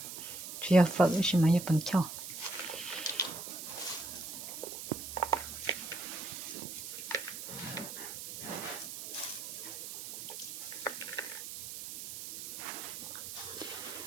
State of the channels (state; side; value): noise; right; hiss, 8 dB below the sound